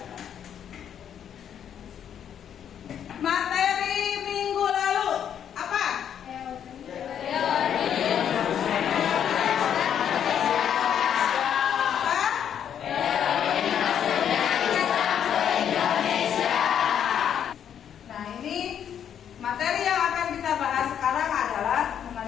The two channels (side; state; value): right; quieter; 9.0 dB